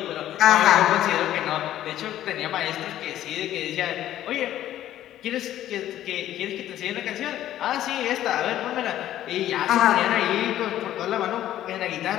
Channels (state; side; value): quieter; right; 12.7 dB